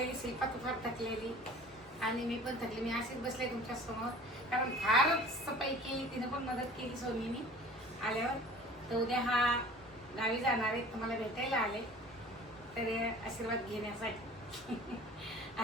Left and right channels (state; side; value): normal; both; correlation 0.45